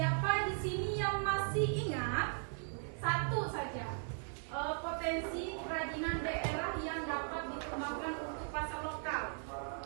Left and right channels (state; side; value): silent; left; 52 dB below the other